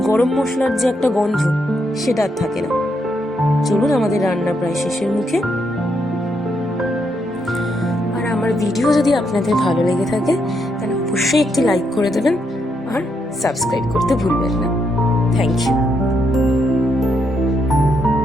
গরম মশলার যে একটা গন্ধ সেটা আর থাকে না। চলুন, আমাদের রান্না প্রায় শেষের মুখে। আর আমার ভিডিও যদি আপনাদের ভালো লেগে থাকে তাহলে অবশ্যই একটি লাইক করে দেবেন আর সাবস্ক্রাইব করতে ভুলবেন না। Thank you.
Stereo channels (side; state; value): both; normal; correlation 0.78